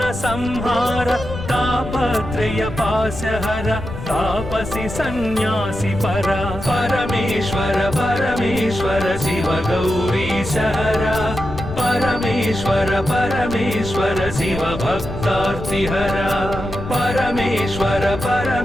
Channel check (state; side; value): noise; left; rumble, 9 dB below the sound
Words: संहार तापत्रय पाशहर तापसी सन्यासी परा परमेश्वर परमेश्वर शिव गौरीशहरा परमेश्वर परमेश्वर शिव भक्तार्तिहरा परमेश्वर